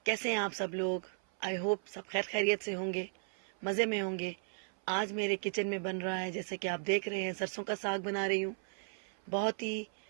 कैसे हैं आप सब लोग? आई होप सब खैर खैरियत से होंगे, मज़े में होंगे। आज मेरे किचन में बन रहा है, जैसे कि आप देख रहे हैं, सरसों का साग बना रही हूँ। बहुत ही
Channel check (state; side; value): silent; left; 54 dB below the other